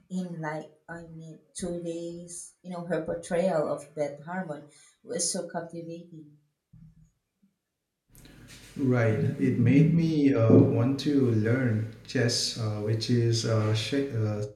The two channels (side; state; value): both; identical; correlation 1.00